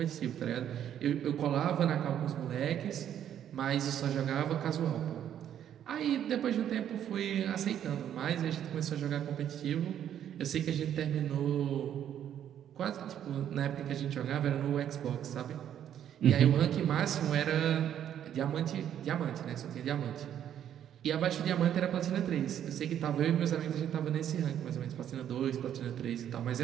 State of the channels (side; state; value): left; quieter; 10.1 dB